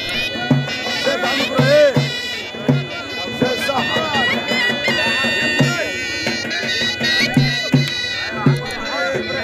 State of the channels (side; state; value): both; identical; correlation 1.00